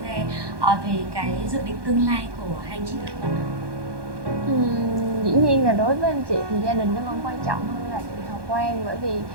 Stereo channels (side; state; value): left; late; 1.2 ms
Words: về cái dự định tương lai của hai anh chị được không ạ? Dĩ nhiên là đối với anh chị thì gia đình nó vẫn quan trọng hơn là chị Hào Quang, bởi vì